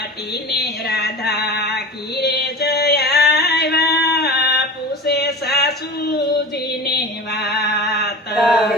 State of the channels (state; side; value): normal; both; correlation 0.32